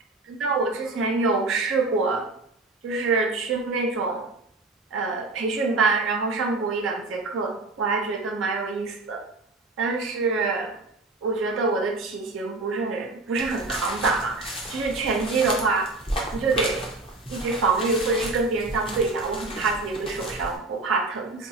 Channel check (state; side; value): quieter; left; 3.3 dB